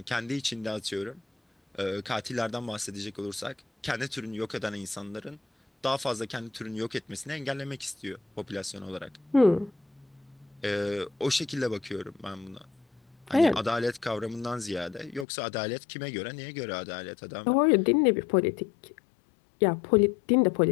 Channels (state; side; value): drops out; right; at 15.2 s